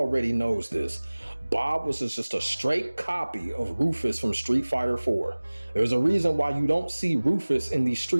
knows this, Bob was just a straight copy of Rufus from Street Fighter 4. There's a reason why you don't see Rufus in these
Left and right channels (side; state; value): both; inverted; correlation -1.00